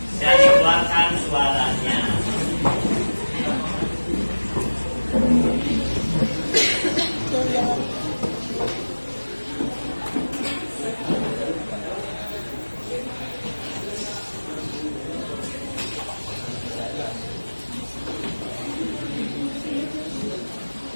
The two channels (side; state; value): both; inverted; correlation -1.00